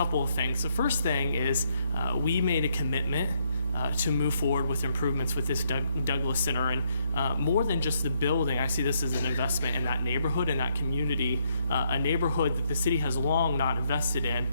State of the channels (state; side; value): inverted; both; correlation -0.73